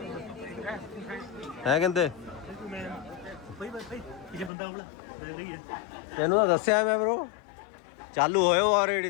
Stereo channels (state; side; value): drops out; right; at 4.5 s